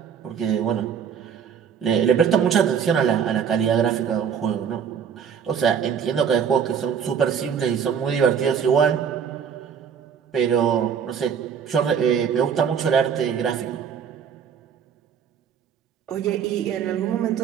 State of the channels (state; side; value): quieter; left; 7.5 dB